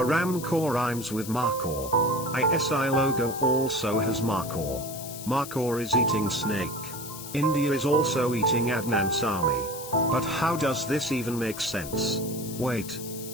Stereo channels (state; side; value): noise; left; hiss, 11 dB below the sound